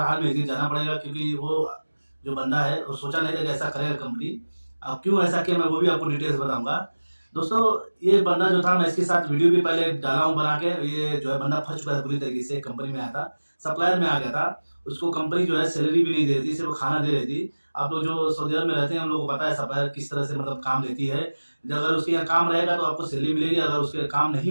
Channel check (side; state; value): both; inverted; correlation -1.00